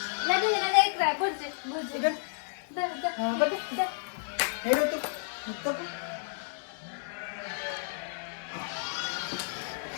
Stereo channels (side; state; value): right; silent; 57 dB below the other